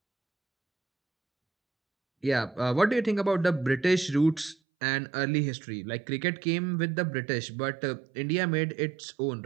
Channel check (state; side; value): drops out; left; at 4.5 s